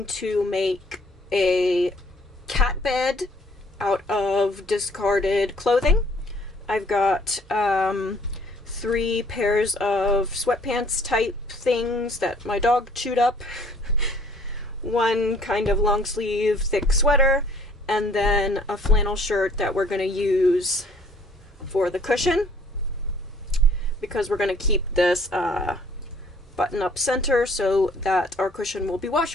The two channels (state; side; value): normal; both; correlation 0.58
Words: to make a cat bed out of discarded clothing. I've got 3 pairs of sweatpants type things that my dog chewed up, one kind of long sleeve thick sweater, and then a flannel shirt that we're going to use for the cushion because we're going to keep this button up center so that our cushion will be